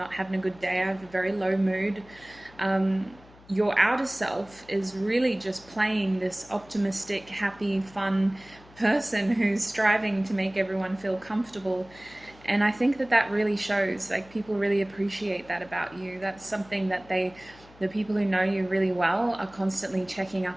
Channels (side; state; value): left; noise; hum, 24 dB below the sound